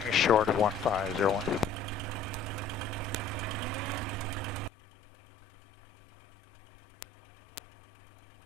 short of 1501.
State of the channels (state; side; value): drops out; right; at 4.7 s